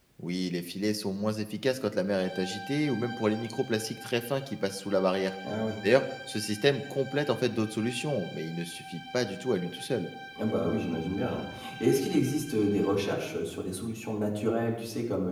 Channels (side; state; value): both; identical; correlation 1.00